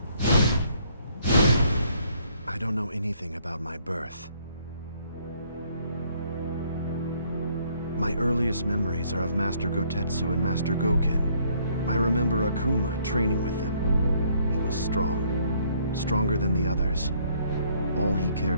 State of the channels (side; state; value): both; inverted; correlation -0.65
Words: I don't know anything about my birth. My earliest memories are of Master Gotetsu and Master Goken. I remember Akuma training with them. He was strong, stronger than the others. All he cared